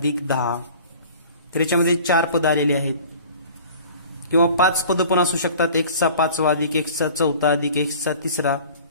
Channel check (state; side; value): inverted; both; correlation -0.44